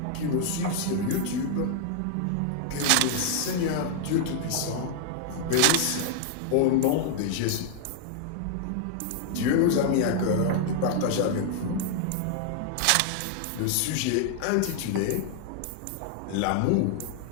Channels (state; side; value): different; both; correlation 0.00